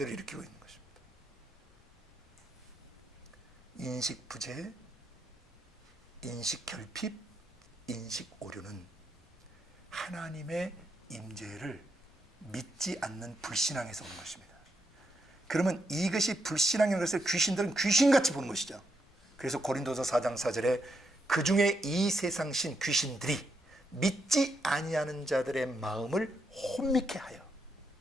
일으키고 있는 것입니다. 인식 부재, 인식 결핍, 인식 오류는 하나님의 임재를 믿지 않는 불신앙에서 오는 것입니다. 그러면 이것이 불신앙인 것을 귀신들은 귀신같이 보는 것이죠. 그래서 고린도서 4장 4절에 그 중에 이 세상신 귀신들이 믿지 아니하는 자들의 마음을 혼미케 하여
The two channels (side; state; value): both; normal; correlation 0.81